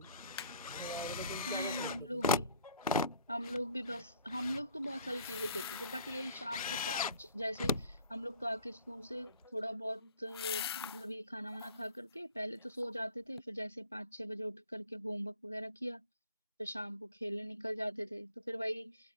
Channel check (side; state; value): both; inverted; correlation -0.53